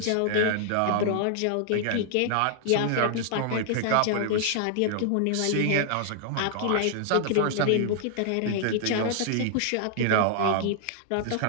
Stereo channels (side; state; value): both; different; correlation -0.01